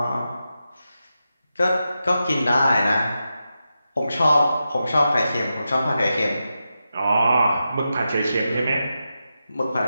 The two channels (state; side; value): inverted; both; correlation -0.89